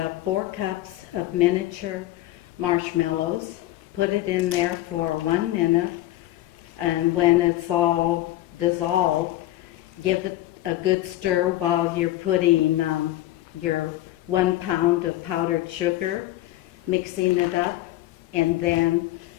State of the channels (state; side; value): quieter; right; 15.6 dB